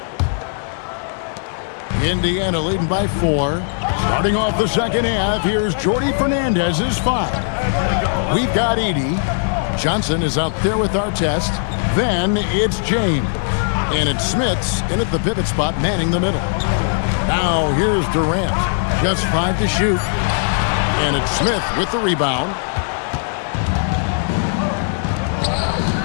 Indiana leading by 4. Starting off the second half, here's Jordy Fernandez's 5. We've got Edey. Johnson is out there with Artest. Then it's James. And it's Smith's in at the pivot spot, manning the middle. Now here's Durant. Just 5 to shoot. And it's Smith with the rebound.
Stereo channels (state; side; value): silent; right; digital silence